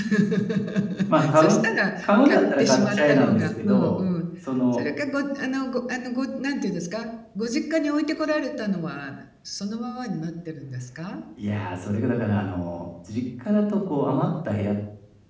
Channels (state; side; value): identical; both; correlation 1.00